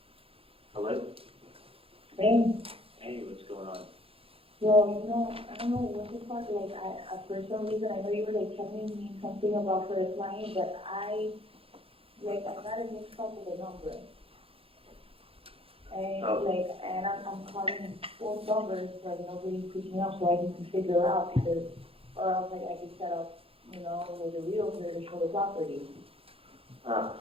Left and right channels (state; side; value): late; left; 0.27 ms